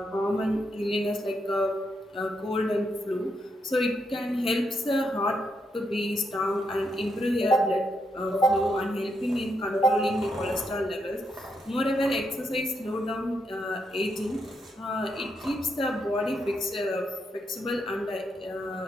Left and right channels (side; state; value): both; normal; correlation 0.80